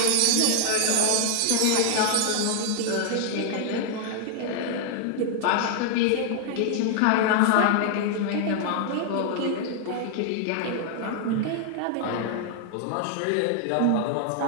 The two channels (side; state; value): both; different; correlation 0.00